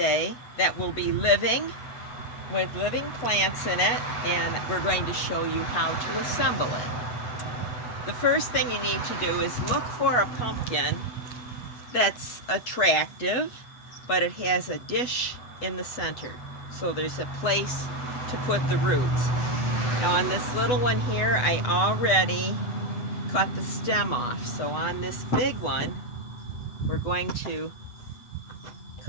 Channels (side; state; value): right; late; 8.1 ms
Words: that will be living with living plants in it, and we're going to show you how to assemble it. The first thing you need to do is look for a pumpkin that's attractive, but it has a dish in the center, so there's a place to put the roots. Now on this little one here, I already cut the stem off, so on this big one we're going to